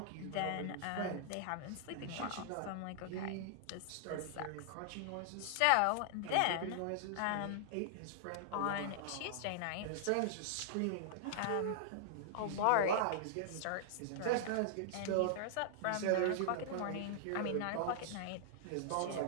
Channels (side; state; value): both; different; correlation -0.01